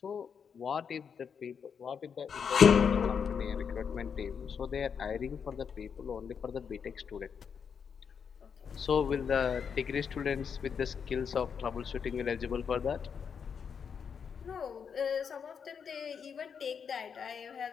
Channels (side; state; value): right; quieter; 6.8 dB